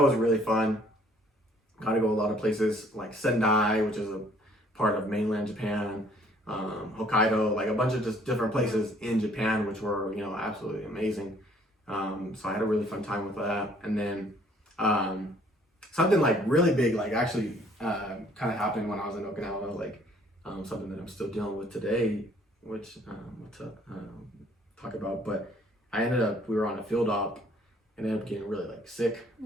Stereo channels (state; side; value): normal; both; correlation 0.60